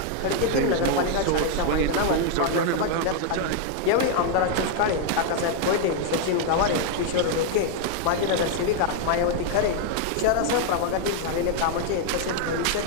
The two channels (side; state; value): both; different; correlation 0.00